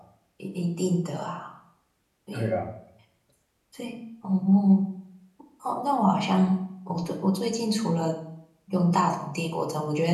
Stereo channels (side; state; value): both; identical; correlation 1.00